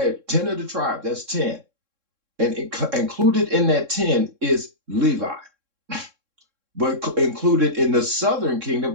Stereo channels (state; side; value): late; left; 3.7 ms